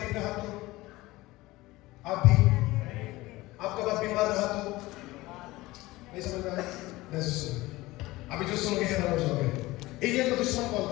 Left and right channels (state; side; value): quieter; right; 19.3 dB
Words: रहा तो आप भी, आपका बाप बीमार रहा तो नहीं समझ में आया? नहीं सुन, अभी जो सुनोगे हैरान हो जाओगे। एलिया का दुश्मन कौन